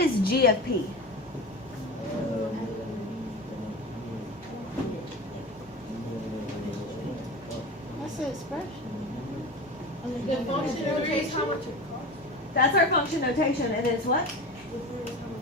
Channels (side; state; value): both; normal; correlation 0.30